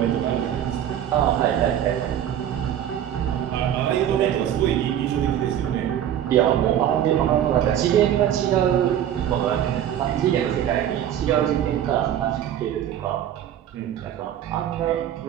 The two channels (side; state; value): left; quieter; 10.6 dB